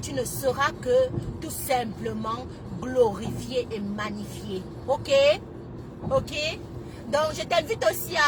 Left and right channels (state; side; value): identical; both; correlation 1.00